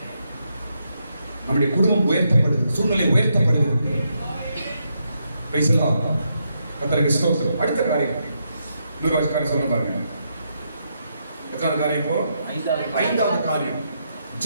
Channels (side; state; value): both; inverted; correlation -0.80